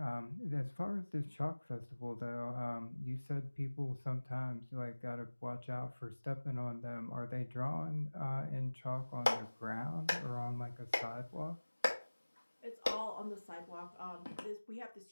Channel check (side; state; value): both; inverted; correlation -1.00